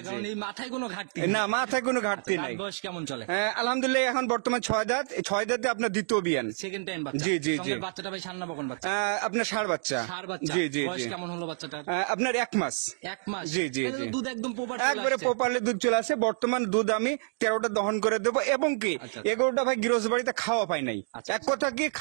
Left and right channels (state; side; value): silent; left; digital silence